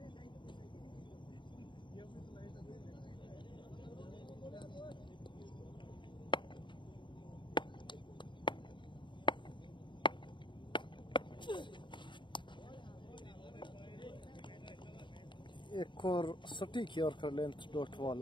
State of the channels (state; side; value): late; right; 0.23 ms